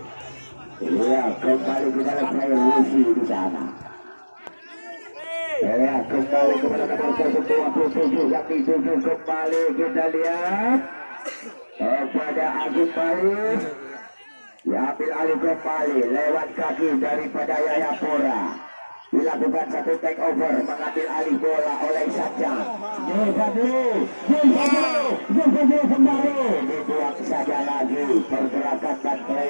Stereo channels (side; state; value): both; inverted; correlation -1.00